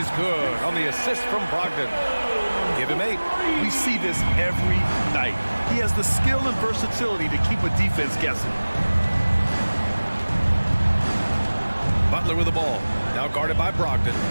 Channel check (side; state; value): both; inverted; correlation -1.00